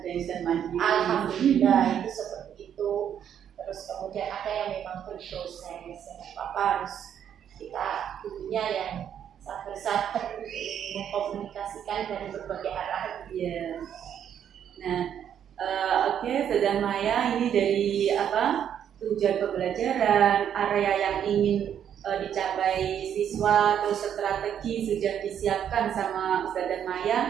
yang mandiri. Alhamdulillah itu seperti itu. Terus kemudian ada yang memang berproses, apa harus kita gurunya yang sabar-sabar mengkomunikasikan dari berbagai arah. Iya. Nah, oke, Ustazah Maya, ini dari tujuan pembelajaran, area yang ingin dicapai siswa, terus strategi sudah disiapkan sama Ustazah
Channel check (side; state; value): left; quieter; 9.2 dB